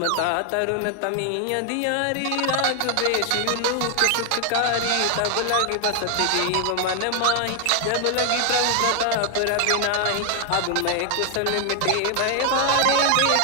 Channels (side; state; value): both; different; correlation 0.00